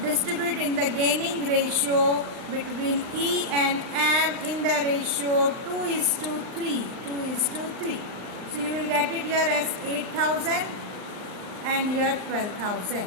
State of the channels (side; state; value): left; late; 39 ms